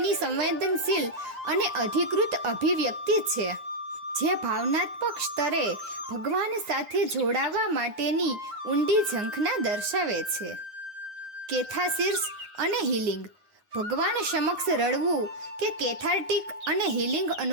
સંવેદનશીલ અને અધિકૃત અભિવ્યક્તિ છે, જે ભાવનાત્મક સ્તરે ભગવાન સાથે જોડાવા માટેની ઊંડી ઝંખના દર્શાવે છે. કેથાર્સિસ અને હીલિંગ. ભગવાન સમક્ષ રડવું કે કેથાર્ટિક અને હીલિંગ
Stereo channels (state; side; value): late; left; 9.6 ms